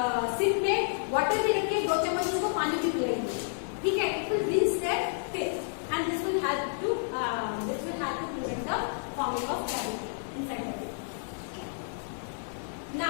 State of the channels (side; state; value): right; silent; digital silence